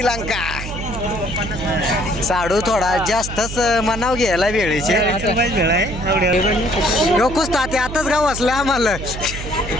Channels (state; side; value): noise; right; hum, 8 dB below the sound